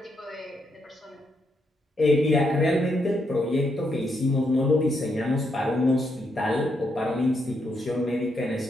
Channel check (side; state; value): both; normal; correlation 0.79